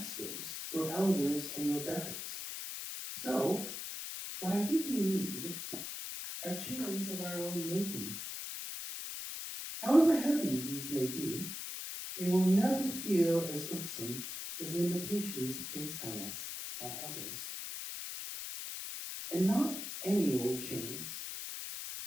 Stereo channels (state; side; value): noise; left; hiss, 6 dB below the sound